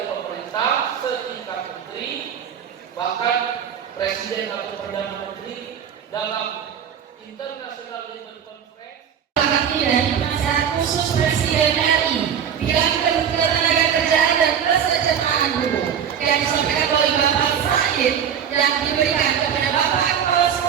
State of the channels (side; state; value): left; quieter; 8.4 dB